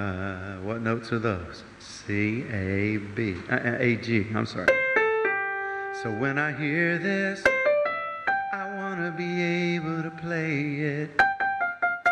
What notes are those? C A B A G. I'm sorry. So when I hear this, I want to be able to play it.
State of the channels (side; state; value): both; identical; correlation 1.00